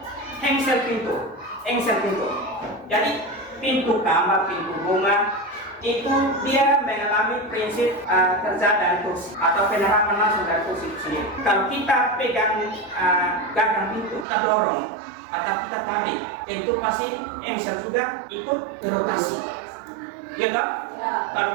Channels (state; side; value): drops out; left; at 14.2 s